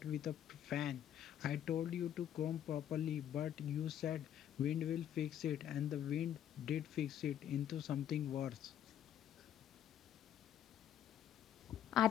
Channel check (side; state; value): right; quieter; 10.3 dB